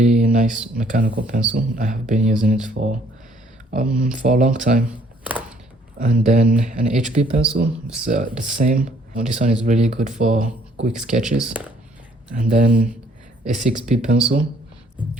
nice mechanical pencil. I have been using it for a long time. And then an HB pencil. It's the same. This one is really good for quick sketches. And then a 6B pencil,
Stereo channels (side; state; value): both; normal; correlation 0.63